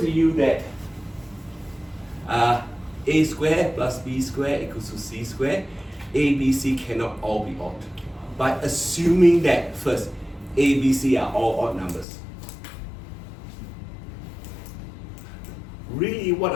you that a squared plus b squared equals to c squared. A, B, C cannot all be odd. By assuming that first, A, B, C are all odd numbers. Really, what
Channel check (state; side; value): drops out; right; at 12.1 s